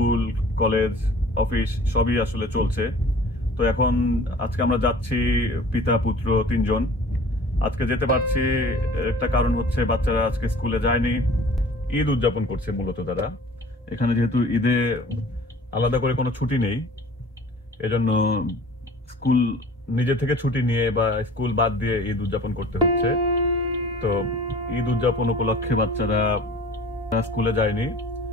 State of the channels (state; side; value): normal; both; correlation 0.46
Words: college office সবই আসলে চলছে। তো এখন আজকে আমরা যাচ্ছি পিতা পুত্র তিনজন। আজকে যেতে পারছি একটা কারণ হচ্ছে বাচ্চারা আজকে স্কুলে যায়নি, ঈদ উদযাপন করছে মূলত তারা। এখানে যেহেতু ঈদে আলাদা করে কোনো ছুটি নেই, এজন্য স্কুল নিজে থেকে ছুটি নিয়ে বা স্কুল বাদ দিয়ে ঈদ উদযাপন করতে হচ্ছে। তো ঈদ উদযাপন উপলক্ষে বাচ্চারা স্কুলে যায়নি।